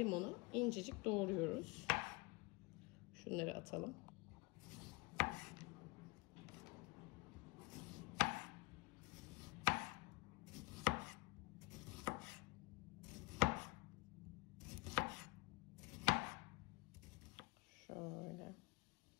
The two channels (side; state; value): right; quieter; 25.2 dB